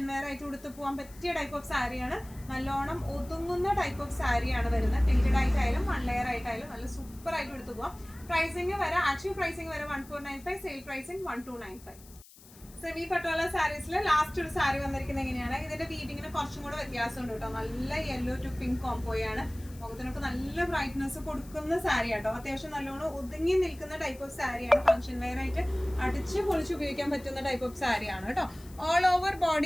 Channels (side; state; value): left; noise; hiss, 22 dB below the sound